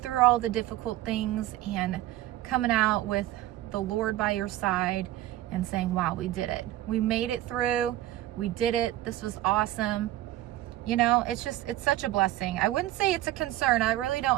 all the difficult things, and coming out with the Lord by your side and saying, wow, we did it. We made it through. We did it. This was awesome. You know, it's such a blessing. I wouldn't say it's a concern. I really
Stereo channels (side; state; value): left; quieter; 14.9 dB